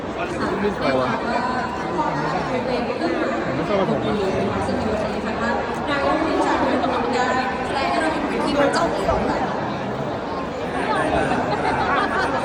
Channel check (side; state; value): both; identical; correlation 1.00